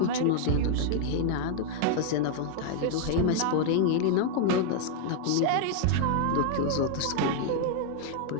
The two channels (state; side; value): different; both; correlation 0.00